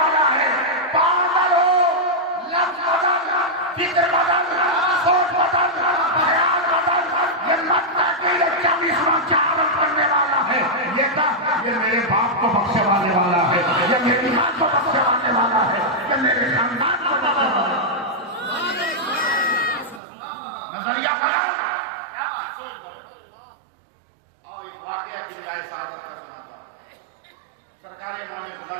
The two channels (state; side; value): drops out; left; at 20.0 s